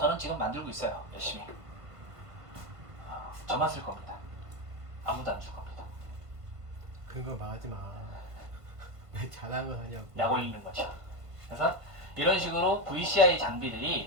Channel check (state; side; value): late; left; 1.5 ms